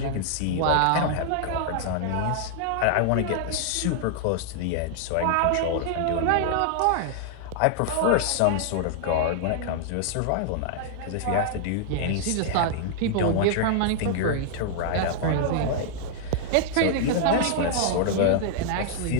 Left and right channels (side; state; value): both; different; correlation -0.01